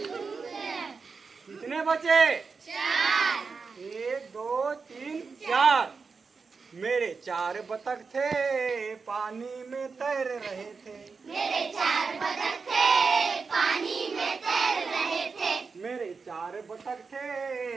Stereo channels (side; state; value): left; quieter; 4.9 dB